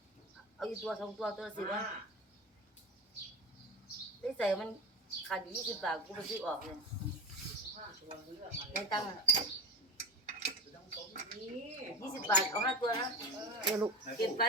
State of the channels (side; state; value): both; normal; correlation 0.23